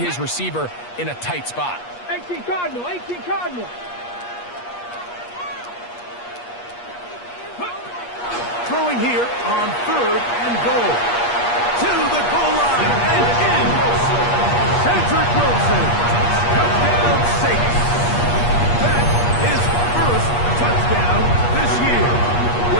receiver in a tight spot. 18 Cardinal, 18 Cardinal. Throwing here on third and goal. To the goal line and in. Cedric Wilson. Touchdown Saints. That is first touchdown this year.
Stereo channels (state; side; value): late; right; 8.4 ms